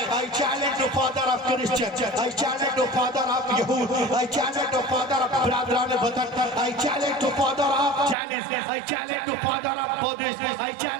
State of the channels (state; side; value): drops out; left; at 8.2 s